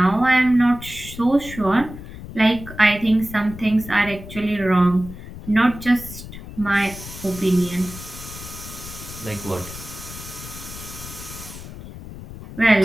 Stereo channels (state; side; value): noise; left; rumble, 13 dB below the sound